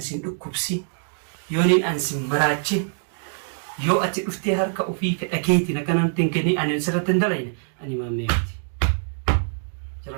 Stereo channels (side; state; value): left; silent; digital silence